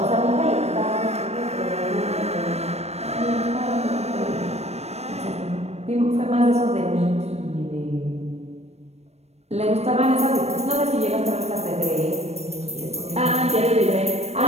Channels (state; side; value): late; left; 0.31 ms